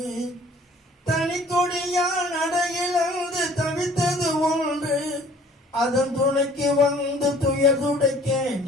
தனி கொடியால் நடையிழந்து தவித்தது ஒன்று, அதன் துணைக்கு வந்து துயர் துடைக்க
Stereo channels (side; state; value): both; normal; correlation 0.53